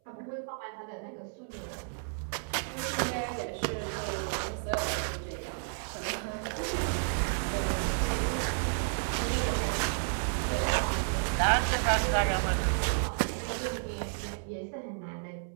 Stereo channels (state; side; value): silent; left; 57 dB below the other